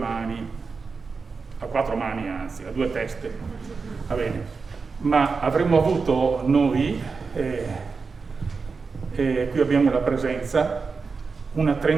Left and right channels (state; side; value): quieter; left; 4.7 dB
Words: a 4 mani anzi, a 2 teste, va bene. Ma avremmo avuto noi, qui abbiamo la presenza, una